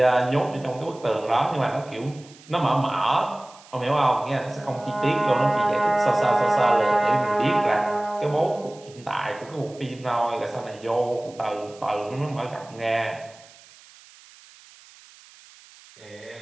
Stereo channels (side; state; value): right; noise; hiss, 24 dB below the sound